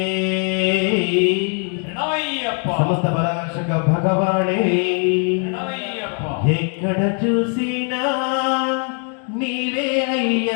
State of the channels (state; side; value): quieter; right; 39.7 dB